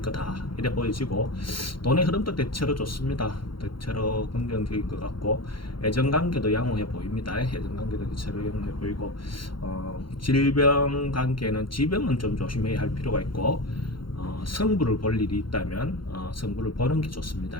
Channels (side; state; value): right; late; 0.73 ms